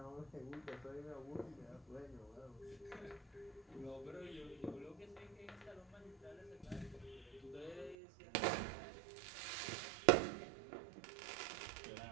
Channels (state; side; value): drops out; left; at 8.0 s